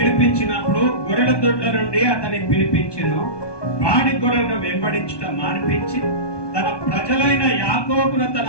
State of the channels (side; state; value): right; late; 1.2 ms